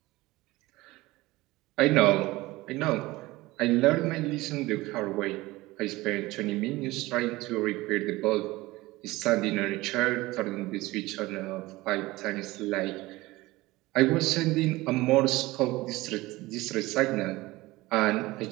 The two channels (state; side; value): quieter; left; 19.6 dB